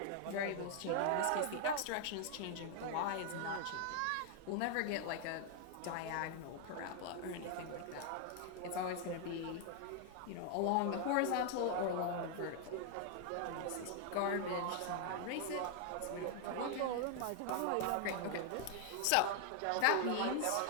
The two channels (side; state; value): both; different; correlation 0.00